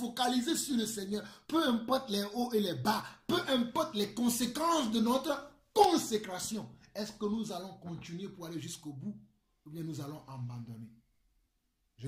sur le Seigneur. Peu importe les hauts et les bas, peu importe les conséquences de notre consécration. Est-ce que nous allons continuer pour aller jusqu'au bout ou bien nous allons abandonner? Je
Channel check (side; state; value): both; identical; correlation 1.00